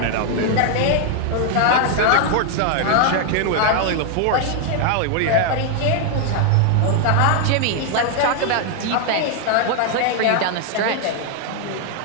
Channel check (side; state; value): both; different; correlation 0.00